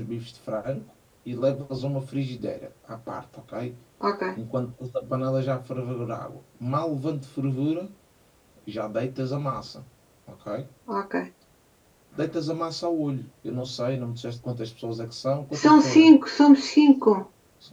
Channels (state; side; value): identical; both; correlation 1.00